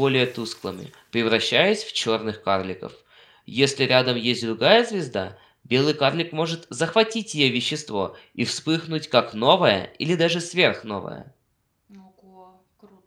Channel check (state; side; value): identical; both; correlation 1.00